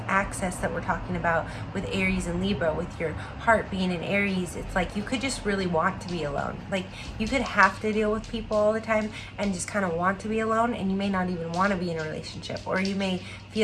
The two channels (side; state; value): both; identical; correlation 1.00